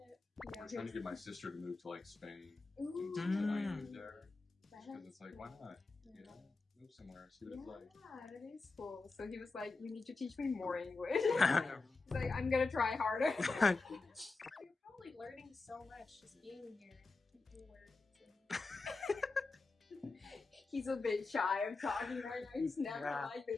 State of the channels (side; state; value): right; quieter; 3.8 dB